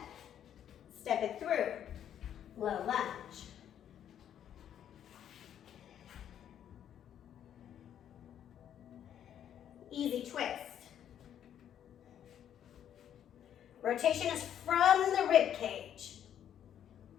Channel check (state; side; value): quieter; right; 9.9 dB